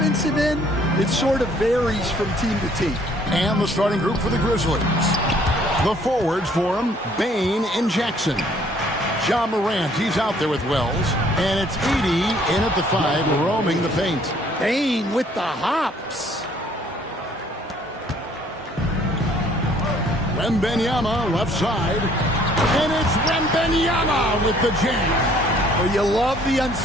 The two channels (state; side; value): normal; both; correlation 0.61